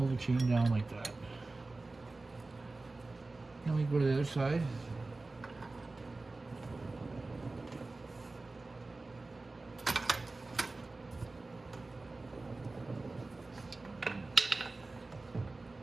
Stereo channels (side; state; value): left; quieter; 3.3 dB